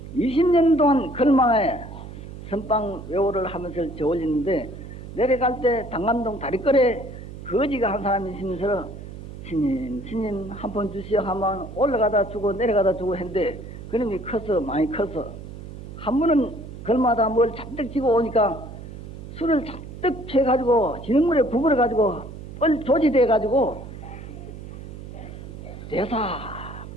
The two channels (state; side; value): noise; right; hum, 12 dB below the sound